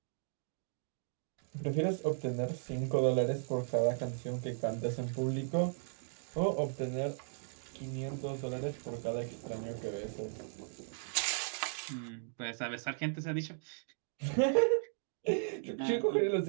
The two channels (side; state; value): left; silent; digital silence